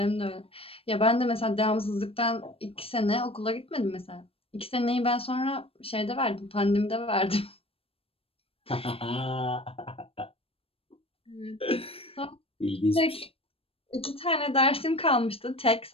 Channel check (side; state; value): right; late; 0.28 ms